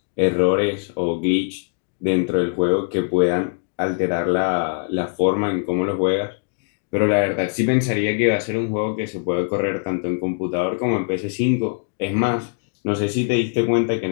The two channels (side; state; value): right; silent; 64 dB below the other